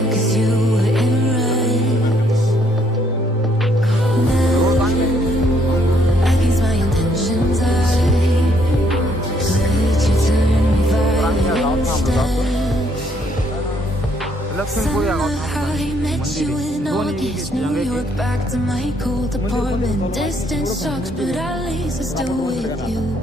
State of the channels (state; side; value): normal; both; correlation 0.69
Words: Back to my cold apartment. Distance sucks, but at least I'm still with you.